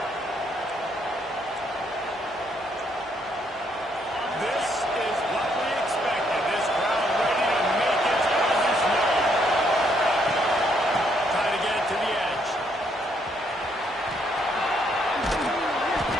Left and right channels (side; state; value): both; normal; correlation 0.72